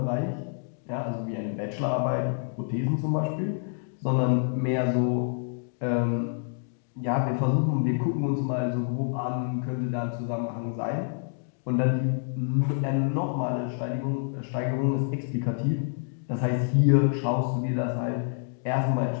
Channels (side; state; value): right; silent; digital silence